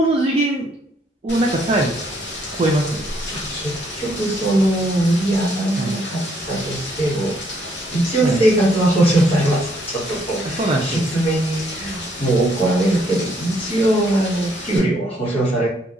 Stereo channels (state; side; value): normal; both; correlation 0.69